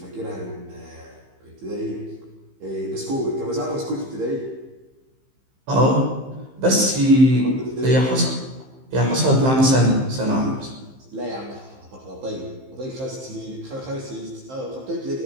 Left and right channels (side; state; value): left; late; 15 ms